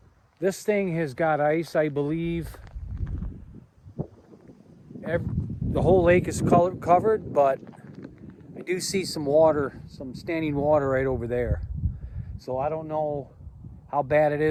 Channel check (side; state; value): both; identical; correlation 1.00